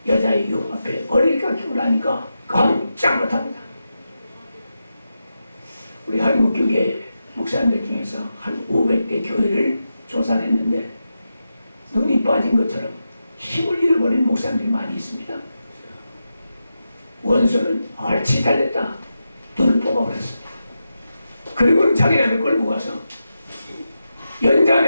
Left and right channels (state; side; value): inverted; both; correlation -0.89